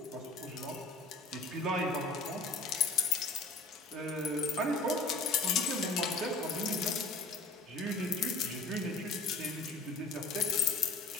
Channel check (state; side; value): quieter; right; 3.4 dB